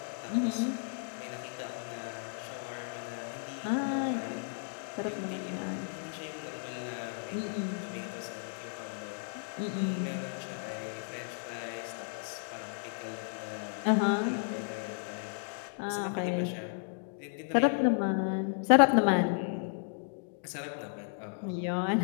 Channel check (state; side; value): silent; right; digital silence